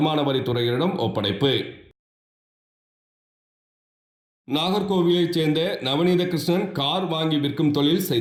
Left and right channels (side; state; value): both; identical; correlation 1.00